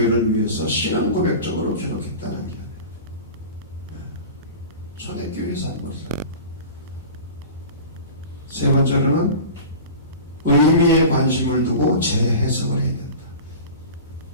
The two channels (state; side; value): inverted; both; correlation -0.35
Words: 위해서 신앙 고백적으로 기록했다는 게 초대교회 산물이다. 세 번째로는 의미에 관심을 두고 재해석을 해야 된다.